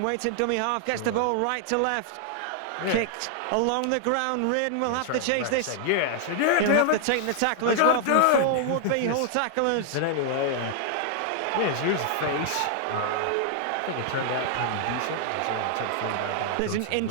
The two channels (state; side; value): different; both; correlation 0.00